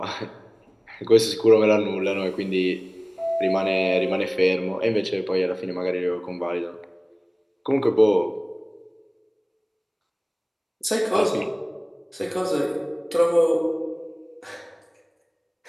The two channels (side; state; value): both; identical; correlation 1.00